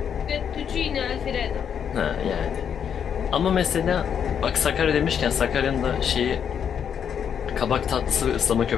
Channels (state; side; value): quieter; right; 8.0 dB